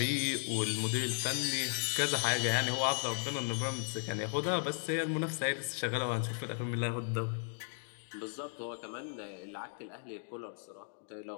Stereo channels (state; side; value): silent; right; 54 dB below the other